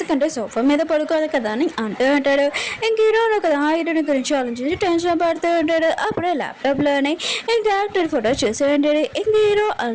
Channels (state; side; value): identical; both; correlation 1.00